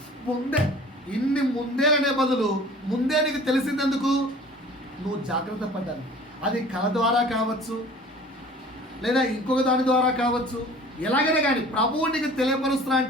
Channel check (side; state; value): both; normal; correlation 0.46